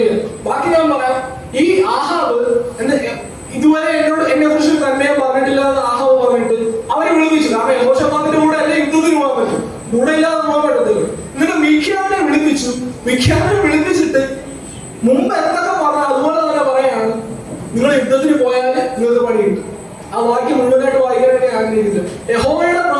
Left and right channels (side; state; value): both; identical; correlation 1.00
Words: ബാക്കി ഞാൻ പറയാം. ഈ ആഹാബ് ഇതുവരെ എന്നെ കുറിച്ച് നന്മയെ പറഞ്ഞിട്ടില്ല എന്ന് ആഹാബ് പറഞ്ഞിട്ട് അവരെ വിളിപ്പിച്ചു. കാരണം യഹോശഫാത്തിന്റെ കൂടെ അല്ലേ യുദ്ധത്തിന് പോകാൻ പറ്റും, കൂടെ ഇല്ലാതെ പോകാൻ പറ്റത്തില്ല. എന്നിട്ട് മിഖ്യാവിനെ വിളിപ്പിച്ചു. മിഖ്യാവിനെ വിളിപ്പിച്ചിട്ട് മുമ്പ് എന്തൊക്കെ പറഞ്ഞ അതുപോലെ തന്നെ പറയാണ്, നിങ്ങൾ യുദ്ധത്തിന് പോയാൽ നിങ്ങൾക്ക് പണി കിട്ടും. ആ വാക്യം മുഴുവനായിട്ട് വായിക്കാനായിട്ട് ഞാൻ ആഗ്രഹിക്കില്ല. യഹോവയുടെ